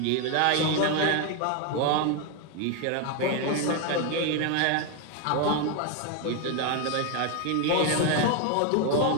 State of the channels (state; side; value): different; both; correlation 0.01